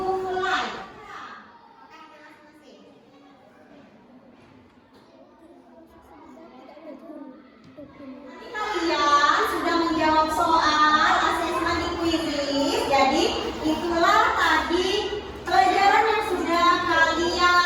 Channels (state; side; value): identical; both; correlation 1.00